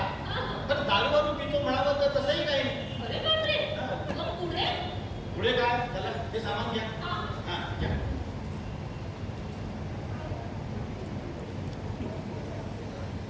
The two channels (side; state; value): both; identical; correlation 1.00